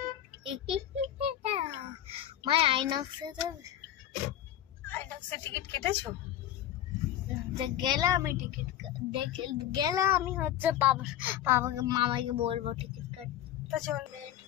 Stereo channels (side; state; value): right; quieter; 11.8 dB